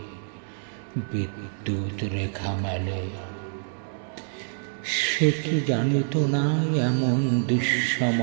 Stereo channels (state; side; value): silent; left; digital silence